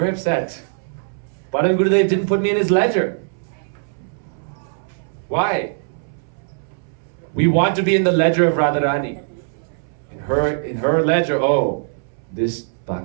upset. Param Gurudev didn't put me in his ledger. Why? We want to be in the ledger of Radharani. In her ledger, oh, this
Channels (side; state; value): left; silent; 65 dB below the other